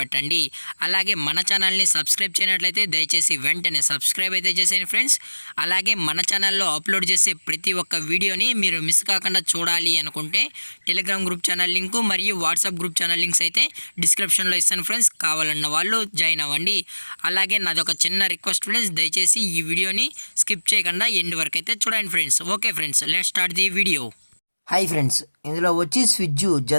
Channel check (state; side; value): inverted; both; correlation -1.00